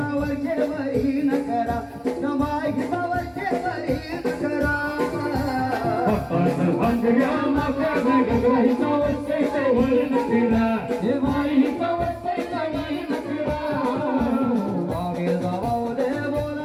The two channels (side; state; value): both; identical; correlation 1.00